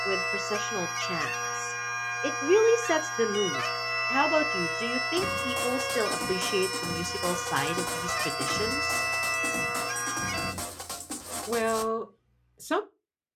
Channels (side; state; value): both; identical; correlation 1.00